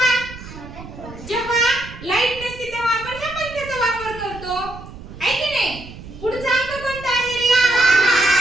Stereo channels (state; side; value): noise; right; rumble, 14 dB below the sound